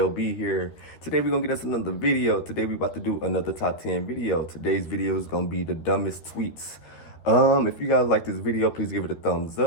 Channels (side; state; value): right; late; 13 ms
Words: B here. Today we're gonna get us another video. Today we're about to do another top 10 video. Today's video is gonna be the dumbest tweets. If you guys like this video, please give it a thumbs